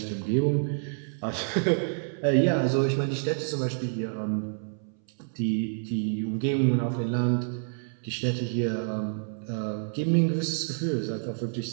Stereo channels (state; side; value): silent; left; 59 dB below the other